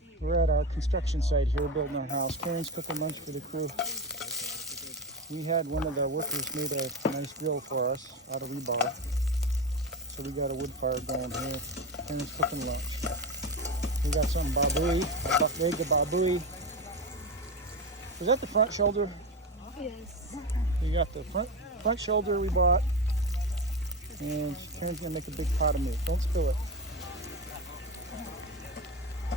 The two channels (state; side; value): normal; both; correlation 0.20